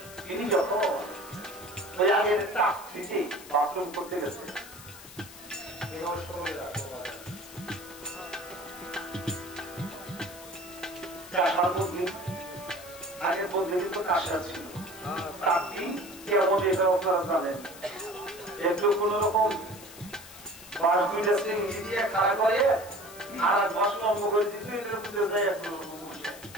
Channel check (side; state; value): left; noise; hiss, 17 dB below the sound